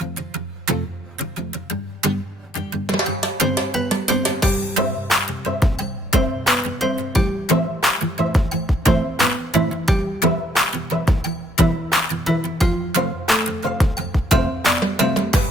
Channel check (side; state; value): both; normal; correlation 0.68